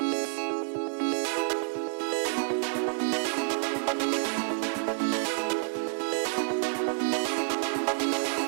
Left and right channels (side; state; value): left; silent; 59 dB below the other